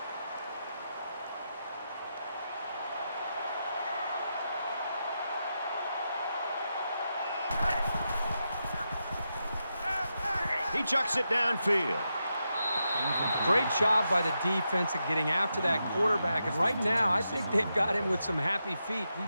He chucks it downfield. Great job by the defense at getting after that quarterback. And right now, I think they've got him with some happy feet. He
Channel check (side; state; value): both; inverted; correlation -0.86